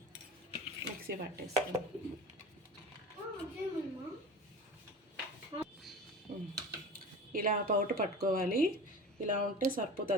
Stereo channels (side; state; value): both; normal; correlation 0.34